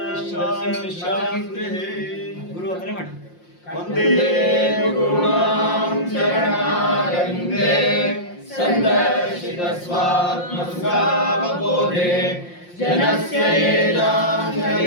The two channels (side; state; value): right; late; 5.7 ms